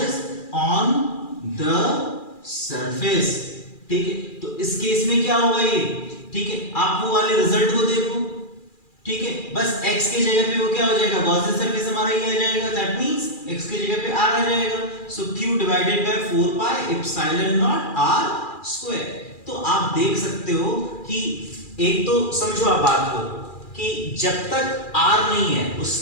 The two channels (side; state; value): right; late; 2.4 ms